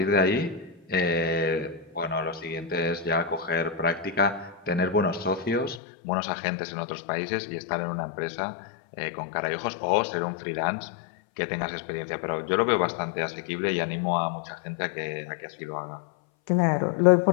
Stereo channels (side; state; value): right; drops out; at 5.8 s